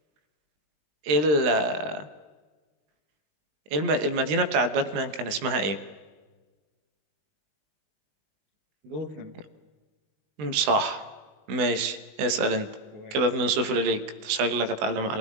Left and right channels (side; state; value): left; late; 20 ms